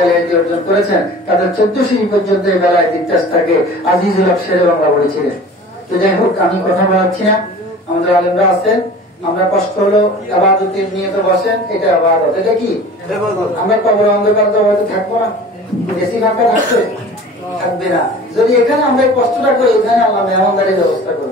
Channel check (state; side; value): normal; both; correlation 0.42